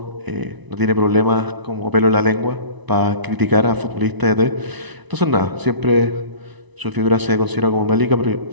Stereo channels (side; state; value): left; late; 1.0 ms